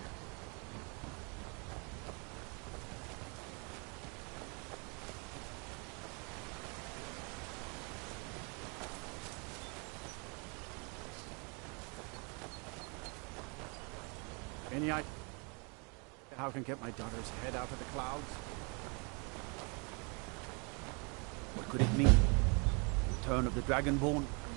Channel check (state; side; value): quieter; left; 33.5 dB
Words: Any idea how I can get my daughter's head out of the clouds? What could it mean? Return of the Dragonborn?